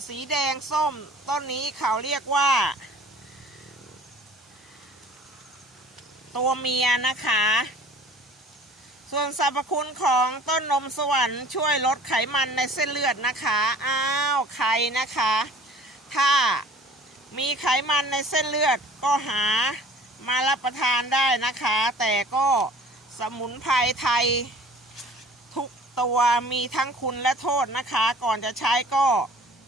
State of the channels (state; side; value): normal; both; correlation 0.48